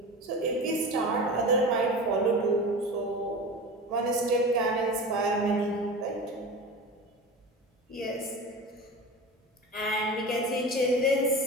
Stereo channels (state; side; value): normal; both; correlation 0.31